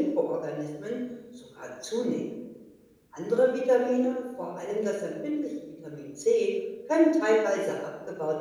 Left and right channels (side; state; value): both; identical; correlation 1.00